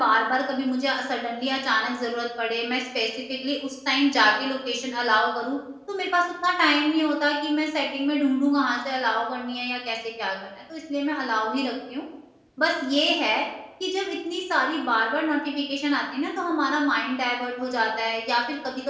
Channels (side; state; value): both; identical; correlation 1.00